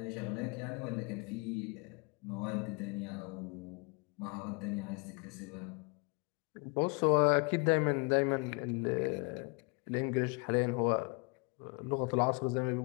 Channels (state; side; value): quieter; right; 32.2 dB